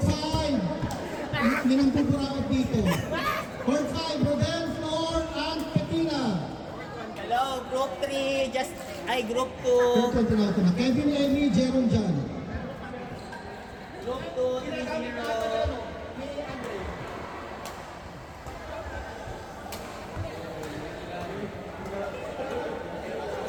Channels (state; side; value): identical; both; correlation 1.00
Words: hindi nang pupurakot dito. Court 5, Rodel, Flor, and Petina. Hello, group 3, group 2. Court 1, tinawag na. Kevin, Emmy, Jerome, John. Group 2, 3-0.